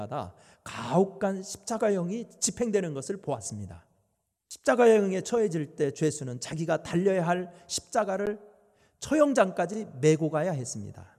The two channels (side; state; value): both; identical; correlation 1.00